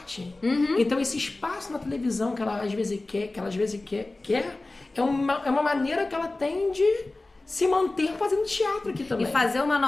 Então, esse espaço na televisão que ela às vezes quer, é uma maneira que ela tem de se manter fazendo teatro aqui também. E fazer uma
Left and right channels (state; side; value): quieter; right; 3.0 dB